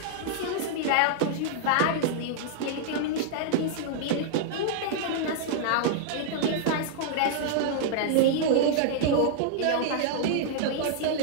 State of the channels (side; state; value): both; different; correlation -0.01